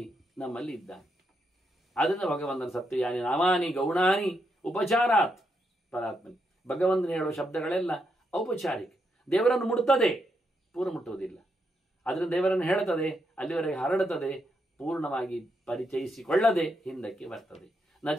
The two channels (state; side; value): normal; both; correlation 0.81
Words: ನಮ್ಮಲ್ಲಿ ಇದ್ದಾನೆ. ಆದ್ದರಿಂದ ಭಗವಂತನ ಸತ್ಯಯಾನಿ ನಾಮಾನಿ ಗೌಣಾನಿ ಉಪಚಾರಾತ್ ಪರಾತ್ಮನಿ. ಭಗವಂತನ ಹೇಳುವ ಶಬ್ದಗಳೆಲ್ಲ ಔಪಚಾರಿಕ, ದೇವರನ್ನು ಮುಟ್ತದೆ, ಪೂರ್ಣ ಮುಟ್ಟುವುದಿಲ್ಲ. ಅದರಿಂದ ದೇವರನ್ನು ಹೇಳುತ್ತದೆ, ಅಲ್ಲಿವರೆಗೆ ಹರಡುತ್ತದೆ, ಪೂರ್ಣವಾಗಿ ಪರಿಚಯಿಸಿಕೊಳ್ಳದೆ ಹಿಂದಕ್ಕೆ ಬರ್ತದೆ. ನ